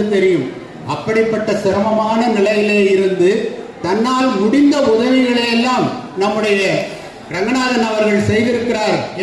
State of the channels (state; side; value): identical; both; correlation 1.00